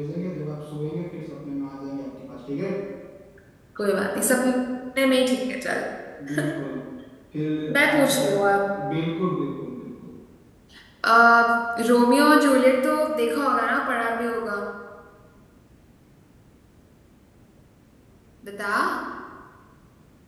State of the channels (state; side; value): identical; both; correlation 1.00